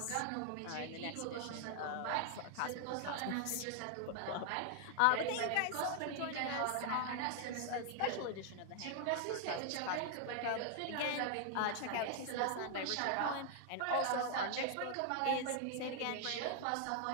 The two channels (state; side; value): different; both; correlation 0.00